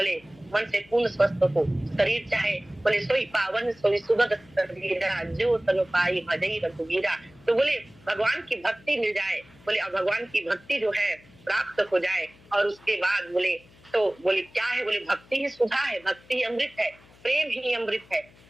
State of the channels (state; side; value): noise; left; hum, 26 dB below the sound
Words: मन से पूर्ण स्वस्थ हो, शरीर चाहे, बोले सोई पावन सोई सुगत शरीरा, जो तनु पाई भजई रघुवीरा। तो बोले भगवान की भक्ति मिल जाए, बोले अब भगवान की भक्ति जो है प्राप्त हो जाए, और उसके बाद बोले तो बोले क्या है? बोले भक्ति ही सुधा है, भक्ति ही अमृत है, प्रेम ही अमृत है।